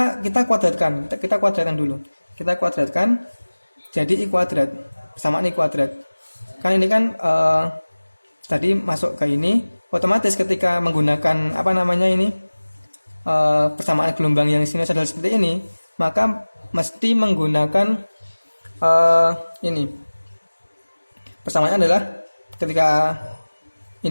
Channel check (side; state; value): both; inverted; correlation -1.00